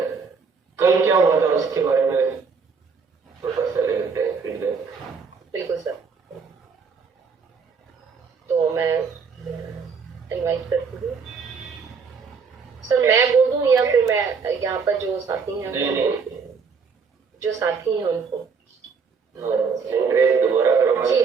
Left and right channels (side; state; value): left; quieter; 5.4 dB